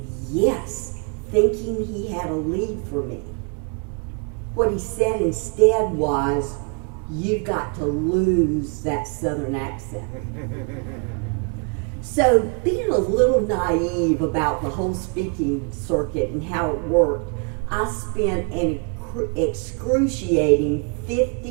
yes, thinking he had a lead for me. What he said instead was, "You've got to lose that Southern accent." So being a little naive about the whole speaking circuit and how it worked, I spent an excruciating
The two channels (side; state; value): left; quieter; 37.7 dB